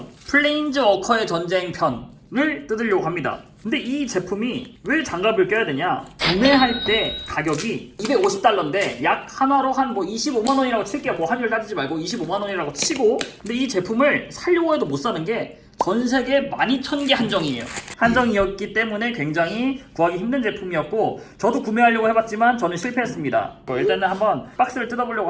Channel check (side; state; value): both; identical; correlation 1.00